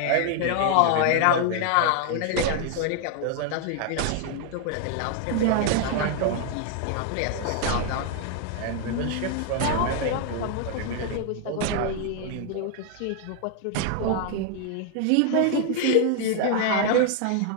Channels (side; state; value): both; different; correlation 0.00